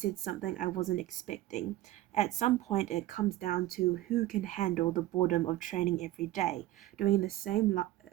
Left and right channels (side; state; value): left; quieter; 15.5 dB